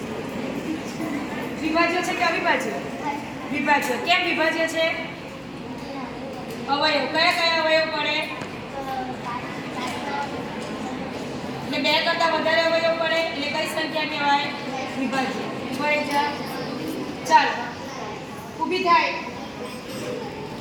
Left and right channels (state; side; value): identical; both; correlation 1.00